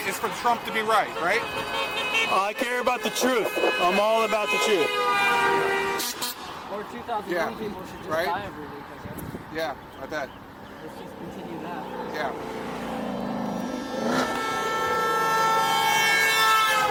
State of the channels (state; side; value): identical; both; correlation 1.00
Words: It's for Trump to be right, right? I care about the truth. I'm all about the truth. Or 2,000 young people should just die every week, I guess. Yeah, I bet. Let's just continue that. Yeah. If